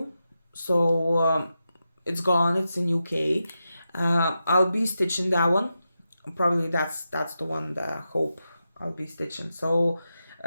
So it's gone, it's in UK. I'll be stitching that one. Probably that's the one that Hope I'll be stitching. So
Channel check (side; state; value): both; inverted; correlation -0.89